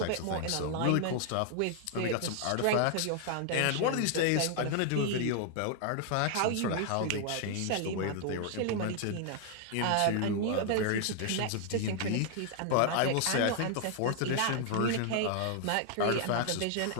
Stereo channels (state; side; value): different; both; correlation 0.00